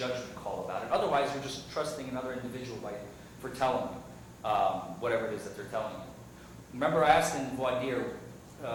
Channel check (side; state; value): both; identical; correlation 1.00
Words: call about it. Otherwise, you're just trusting another individual for telling you whatever it is that they're telling you. Remember, I asked in voir dire,